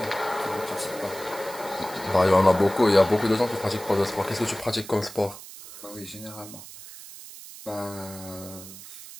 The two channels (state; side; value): noise; right; hiss, 15 dB below the sound